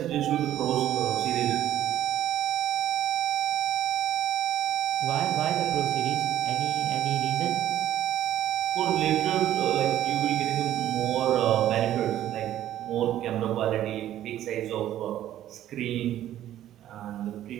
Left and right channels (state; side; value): quieter; left; 12.4 dB